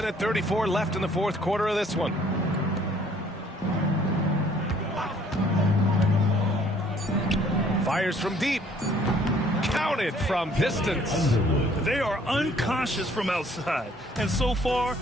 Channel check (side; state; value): both; normal; correlation 0.60